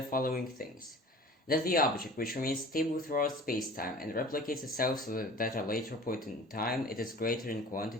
following things. That the object which remains stable throughout space-time and replicates itself so that at a later point in time it is greater in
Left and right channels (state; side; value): normal; both; correlation 0.43